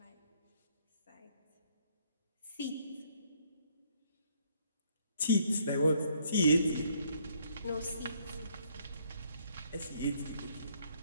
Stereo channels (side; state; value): both; inverted; correlation -0.67